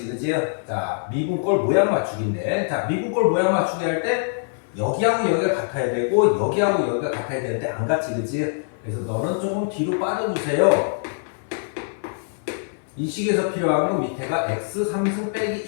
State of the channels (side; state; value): right; silent; 63 dB below the other